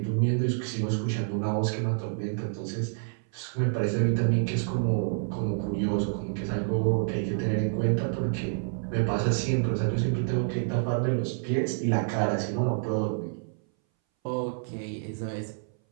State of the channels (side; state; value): left; silent; 59 dB below the other